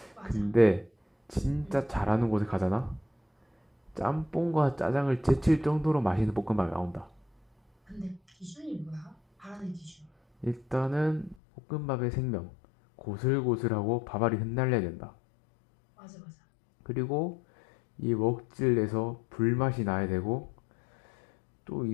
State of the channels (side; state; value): right; drops out; at 11.4 s